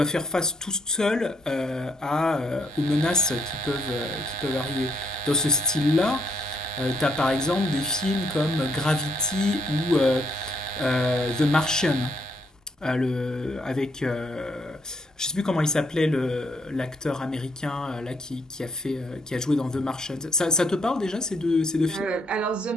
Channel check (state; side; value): normal; both; correlation 0.71